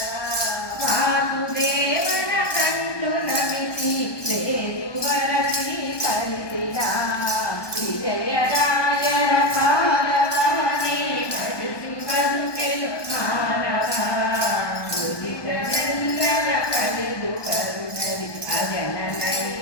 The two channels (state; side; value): late; right; 1.2 ms